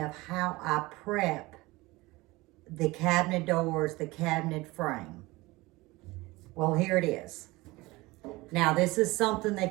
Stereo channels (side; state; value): left; quieter; 21.4 dB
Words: how I prep the cabinet doors, the cabinet frame. Well, here it is. Now, this is something